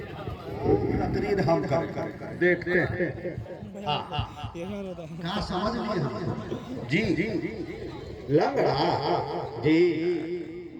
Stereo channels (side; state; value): both; identical; correlation 1.00